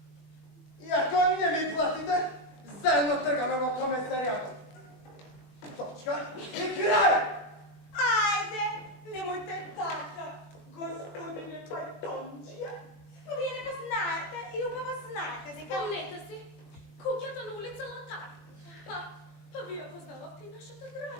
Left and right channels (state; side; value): late; right; 21 ms